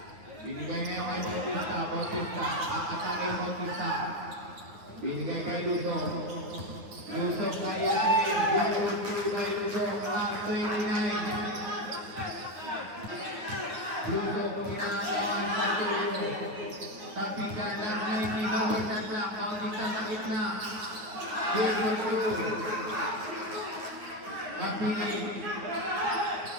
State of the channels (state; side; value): late; left; 9.3 ms